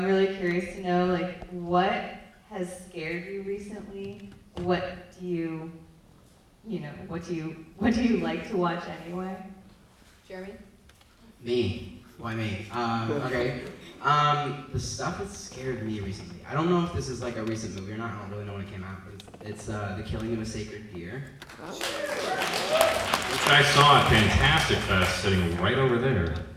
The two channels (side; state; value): both; identical; correlation 1.00